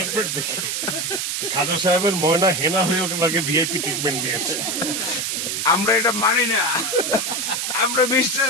দেখে। খাজা সাহেবের ময়না হেনা হয়ে ওকে ভিআইপি ট্রিটমেন্ট দিয়েছে। আমরা এটা মানি না, আমরা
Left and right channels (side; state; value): right; noise; hiss, 1 dB below the sound